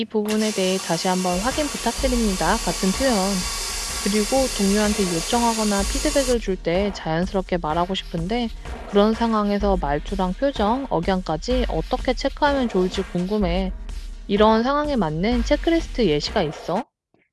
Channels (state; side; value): identical; both; correlation 1.00